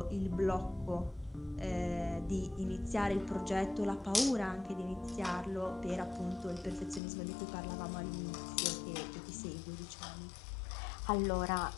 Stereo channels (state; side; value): drops out; right; at 7.0 s